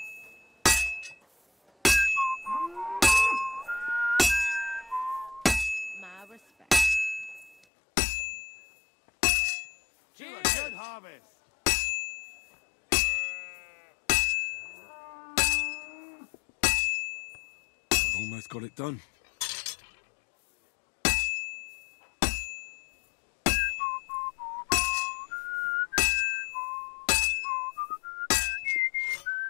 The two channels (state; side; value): drops out; right; at 7.6 s